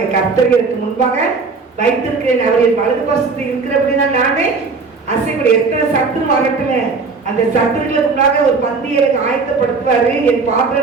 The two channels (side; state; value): left; quieter; 4.4 dB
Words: கர்த்தருக்கு முன்பாக வைத்திருக்கிறேன், அவரின் வலது பசத்தில் இருக்கிற அப்படின்னா நானே அசைக்கூட. எத்தனை சத்துரு வரட்டுல அந்த சத்துருக்களுக்கு முன்னாக ஒரு பந்தியலுக்கு ஆயத்தப்படுத்துவாரு. என்